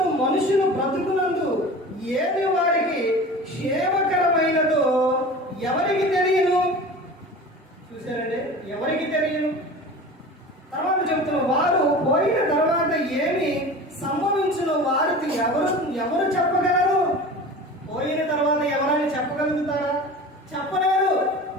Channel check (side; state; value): both; normal; correlation 0.36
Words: మనుషులు బ్రతుకునందు ఏది వారికి క్షేమకరమైనదో ఎవరికి తెలియను? చూసారండి, ఎవరికి తెలియను? తర్వాత చెబుతున్న వారు పోయిన తర్వాత ఏమి సంభవించిన వారికి ఎవరు చెప్పగలరు? పోయిన తర్వాత ఎవరైనా చెప్పగలుగుతారా? చెప్పలేరు.